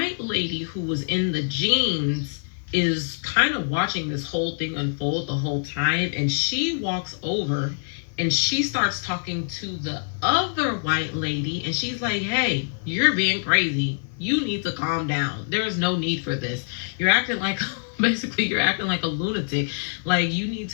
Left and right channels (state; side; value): silent; right; 62 dB below the other